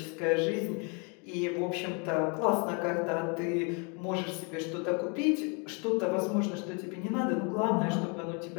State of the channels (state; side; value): quieter; right; 34.1 dB